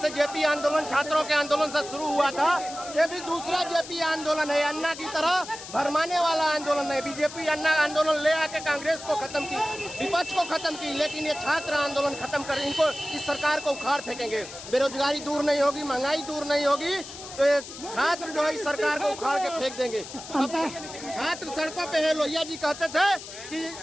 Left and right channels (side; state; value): left; noise; hiss, 13 dB below the sound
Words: जेपी आंदोलन छात्रों के आंदोलन से शुरू हुआ था, ये भी दूसरा जेपी आंदोलन है। अन्ना की तरह भरमाने वाला आंदोलन है। बीजेपी अन्ना आंदोलन ले आके कांग्रेस को खत्म की, विपक्ष को खत्म की, लेकिन ये छात्र आंदोलन खत्म कर इनको इस सरकार को उखाड़ फेंकेंगे। बेरोजगारी दूर नहीं होगी, महंगाई दूर नहीं होगी, तो ये छात्र जो है इस सरकार को उखाड़ के फेंक देंगे। छात्र सड़कों पे है। लोहिया जी कहते थे कि